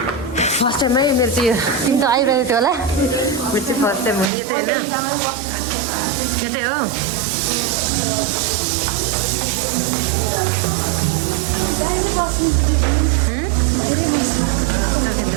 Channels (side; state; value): left; drops out; at 4.3 s